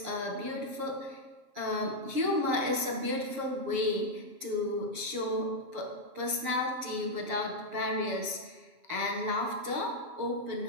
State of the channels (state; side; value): late; left; 7.4 ms